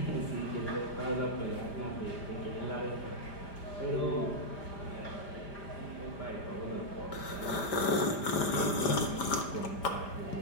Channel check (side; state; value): right; late; 5.0 ms